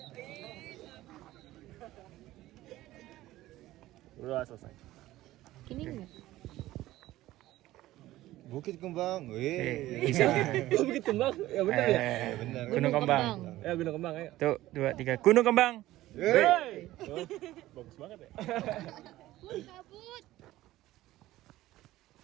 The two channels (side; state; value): left; quieter; 16.0 dB